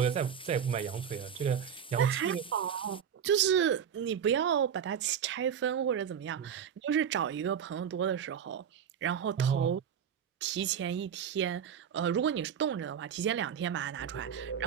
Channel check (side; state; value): left; quieter; 8.2 dB